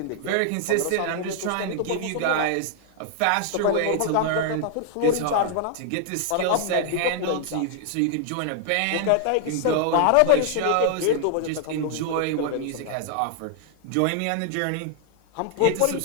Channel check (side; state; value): both; different; correlation 0.00